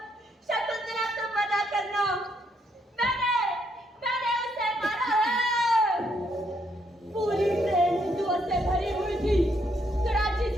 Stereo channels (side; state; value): both; normal; correlation 0.74